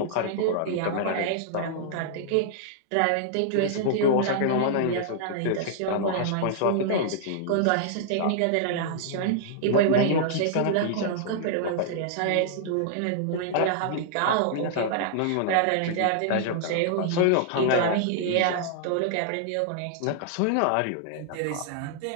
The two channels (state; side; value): different; both; correlation -0.01